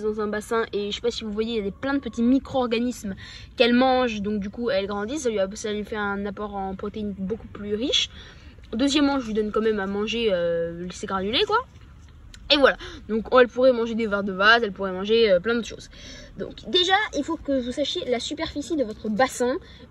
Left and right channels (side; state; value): both; identical; correlation 1.00